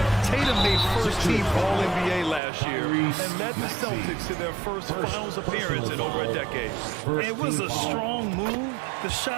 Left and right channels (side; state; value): left; drops out; at 2.4 s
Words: Tatum made first-team All-NBA last year and led the Celtics to their first finals appearance in over a decade. It was a strong move. The